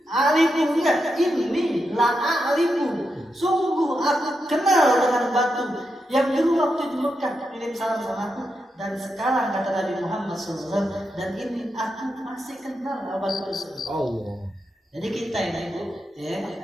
Alifu enggak, ini la alifu. Sungguh aku kenal dengan batu yang dulu waktu di Mekah kirim salam sama aku, dan sekarang kata Nabi Muhammad SAW, dan ini aku masih kenal batu tersebut. Allah. Jadi kita ini Bu, ya,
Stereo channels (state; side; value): normal; both; correlation 0.86